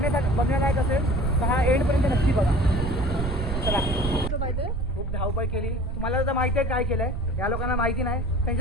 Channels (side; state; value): right; noise; rumble, 2 dB below the sound